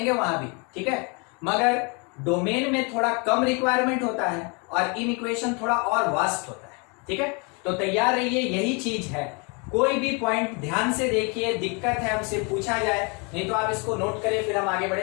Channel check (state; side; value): quieter; right; 32.7 dB